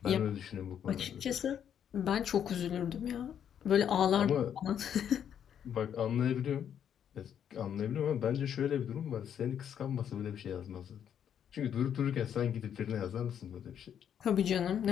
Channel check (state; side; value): quieter; right; 9.0 dB